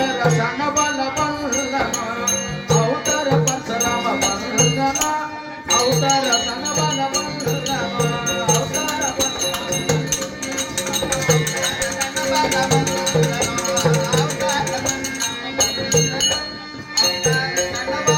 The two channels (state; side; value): identical; both; correlation 1.00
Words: ಸಣ್ಣ ಬಲ ಬಂದನೋ ಅವತಾರ ಪರಶುರಾಮ ಬಂದನೋ ಅವತಾರ ಸಣ್ಣ ಬಲ ಬಂದನೋ ಅವತಾರ